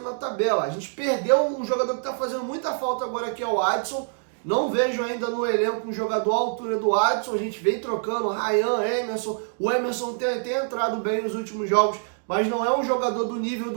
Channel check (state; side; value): silent; left; digital silence